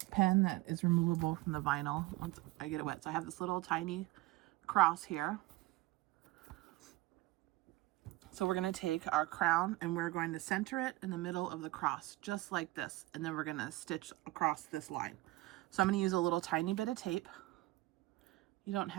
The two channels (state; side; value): quieter; left; 19.6 dB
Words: pen that is removable from the vinyl once I get it wet. So I have this little tiny cross here. So we're going to take our crown and we're going to center it in the middle of the cross, just like this. And then we're going to stitch across this line. So I'm going to use a little tiny bit of tape. You don't